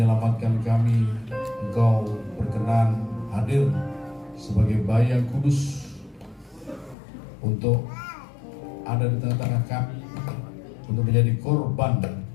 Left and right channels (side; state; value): right; drops out; at 7.0 s